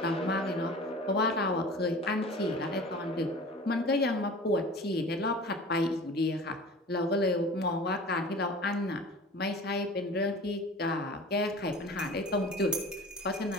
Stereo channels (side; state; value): both; normal; correlation 0.40